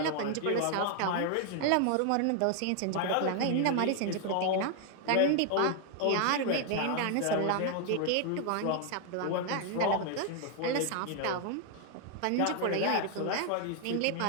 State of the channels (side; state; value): both; different; correlation 0.00